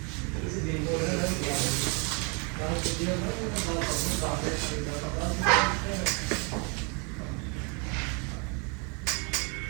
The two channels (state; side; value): quieter; left; 34.3 dB